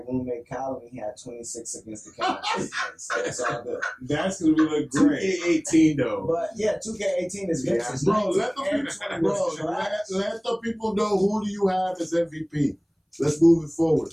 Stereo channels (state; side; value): identical; both; correlation 1.00